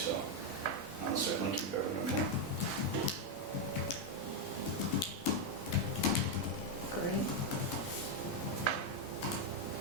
I'll certainly keep everyone informed. Great.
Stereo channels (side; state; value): both; normal; correlation 0.03